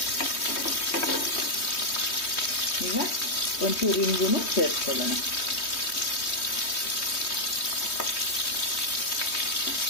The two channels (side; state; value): right; late; 3.2 ms